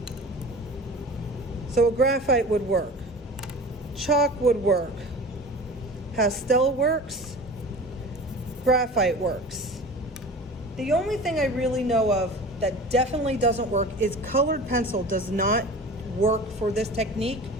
So a graphite would work, chalk would work, pastel works, graphite works. The only thing I really know of that definitely doesn't work is colored pencil does not work for this technique,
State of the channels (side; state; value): both; normal; correlation 0.37